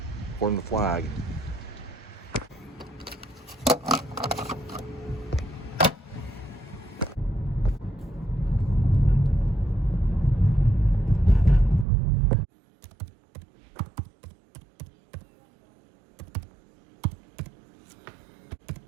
According to the flag,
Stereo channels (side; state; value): left; drops out; at 11.9 s